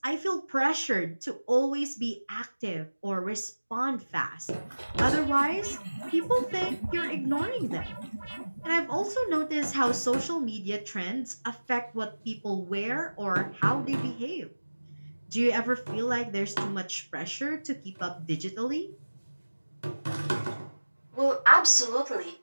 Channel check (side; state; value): both; inverted; correlation -1.00